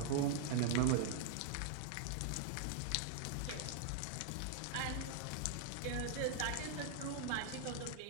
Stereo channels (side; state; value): both; different; correlation 0.00